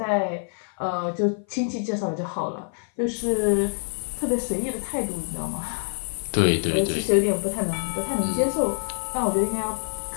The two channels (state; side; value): silent; right; 57 dB below the other